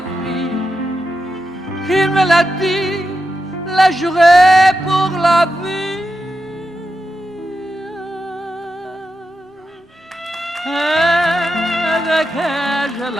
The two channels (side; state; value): both; normal; correlation 0.88